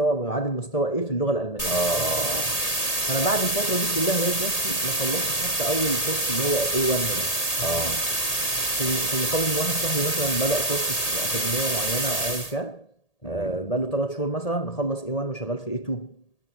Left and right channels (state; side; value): late; right; 1.8 ms